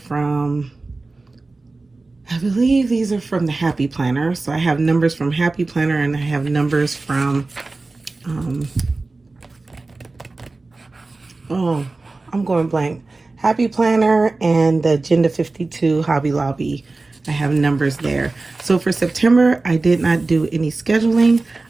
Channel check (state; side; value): quieter; left; 3.5 dB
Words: from, I believe these are from the Happy Planner. So I have numbers from Happy Planner and I have numbers from, oh, I'm going blank. Happy Planner and the Agenda 52 Hobby Lobby. I have numbers there. So for September, I did not do any scheduling.